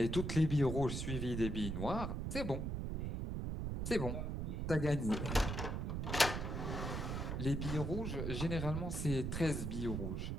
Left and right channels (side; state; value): right; noise; rumble, 2 dB below the sound